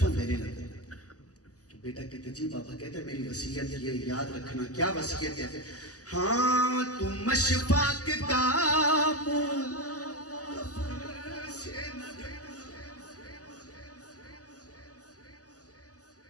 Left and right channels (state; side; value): late; right; 0.67 ms